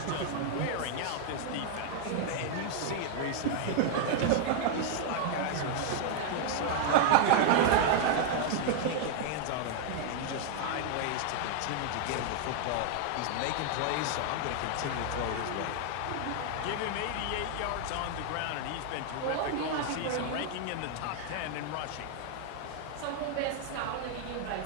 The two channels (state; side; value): different; both; correlation 0.00